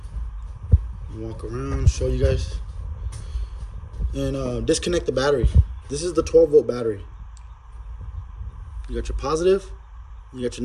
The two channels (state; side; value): identical; both; correlation 1.00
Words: Walk around, show you guys. And disconnect the battery. This is the 12-volt battery. You got your positive, you got your